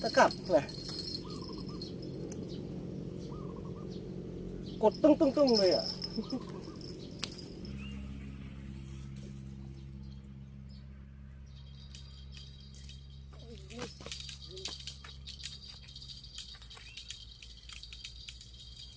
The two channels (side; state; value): both; identical; correlation 1.00